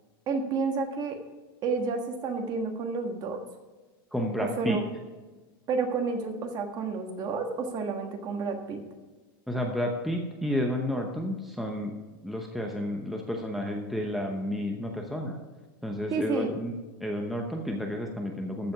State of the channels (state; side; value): normal; both; correlation 0.50